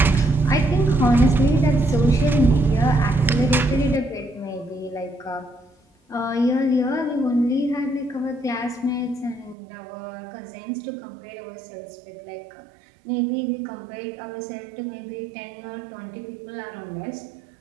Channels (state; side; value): drops out; left; at 9.6 s